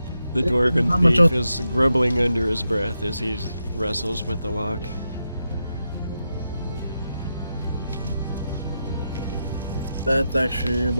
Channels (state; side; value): inverted; both; correlation -0.87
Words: dwarven How much thief is grumbling under his breath as he wrestles with the lock. That's actually